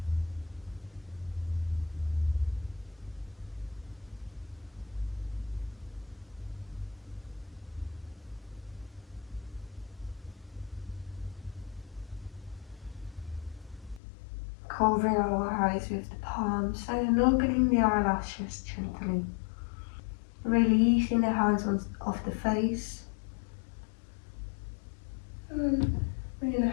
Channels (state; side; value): drops out; right; at 14.0 s